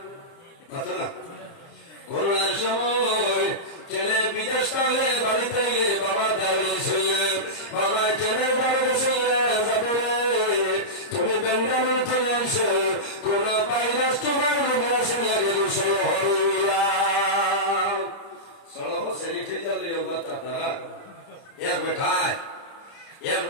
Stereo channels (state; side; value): late; right; 30 ms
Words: কত না করোনার সময় ছেলে বিদেশ কালে বাড়িতে গিয়ে বাবা দাঁড়িয়ে ছিলেন, বাবা ছেলে দাঁড়িয়ে ছিলেন, যাবে তুমি বেঙ্গালু চলেছ, কোন ভাইরাস তোমার রোগে আসিয়া গেল সেই হরিয়া সড়ক সেরি খেয়ে যাবে তারা এক